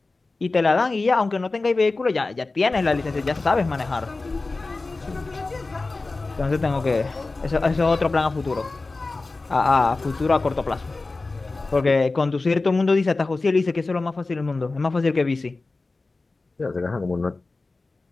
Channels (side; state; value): right; quieter; 3.5 dB